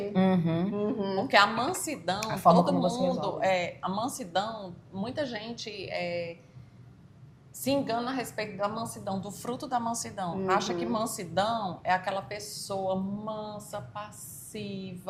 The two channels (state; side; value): identical; both; correlation 1.00